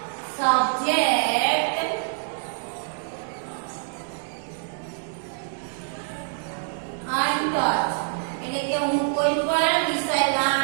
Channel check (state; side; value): silent; left; digital silence